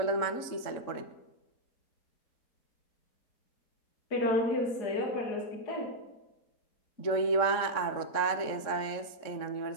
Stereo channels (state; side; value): late; right; 3.7 ms